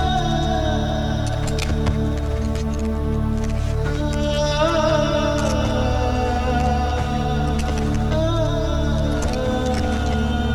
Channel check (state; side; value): identical; both; correlation 1.00